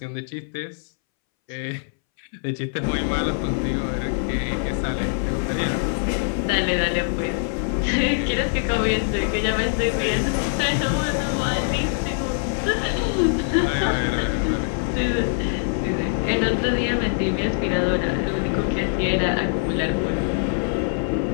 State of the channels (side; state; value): right; silent; 62 dB below the other